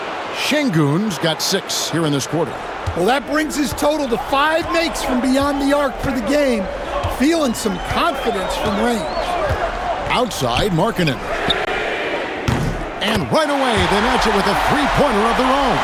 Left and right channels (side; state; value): both; identical; correlation 1.00